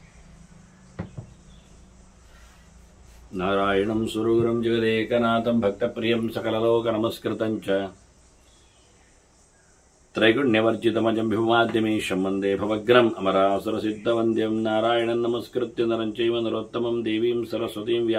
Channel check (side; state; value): both; identical; correlation 1.00